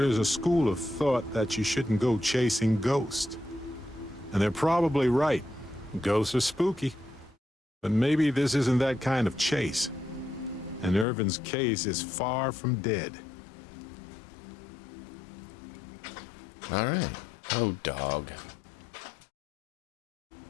a school of thought that you shouldn't go chasing ghosts. And they're probably right. Ghosts are spooky. But maybe this isn't that kind of chase. And Irvin's case is far from dead. All right. Oh, dog.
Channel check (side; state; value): right; drops out; at 11.1 s